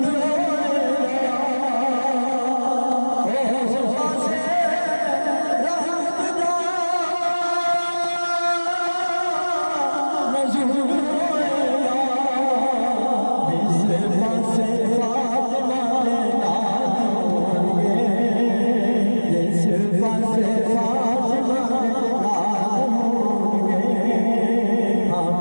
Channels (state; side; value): inverted; both; correlation -1.00